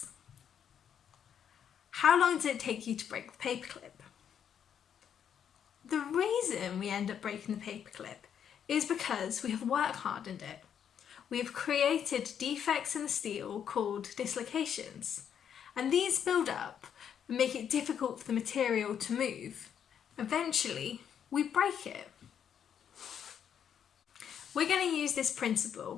How long does it take you to break the paperclip? The reason we end up breaking the paperclip is because we have work hardened it. We have created defects in the steel called dislocations, and these build up and make it difficult for the material to move. Eventually, we break it. We're going to use this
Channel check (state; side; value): quieter; right; 8.5 dB